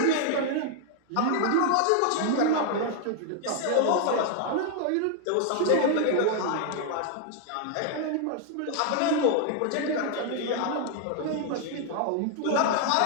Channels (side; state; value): both; different; correlation 0.00